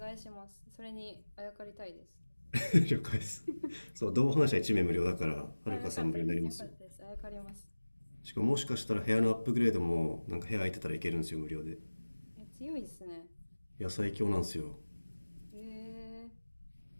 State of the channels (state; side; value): inverted; both; correlation -1.00